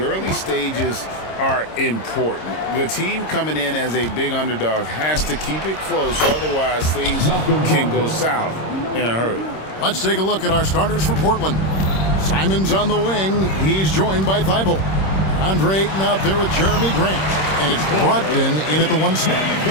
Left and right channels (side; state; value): right; late; 26 ms